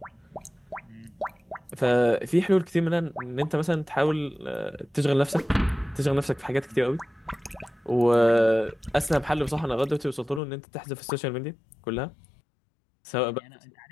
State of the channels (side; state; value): right; drops out; at 10.4 s